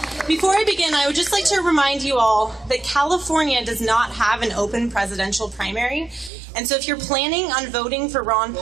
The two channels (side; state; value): left; drops out; at 6.3 s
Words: Before I begin, I would just like to remind you all that California does not have an open presidential primary. And so if you're planning on voting for Ron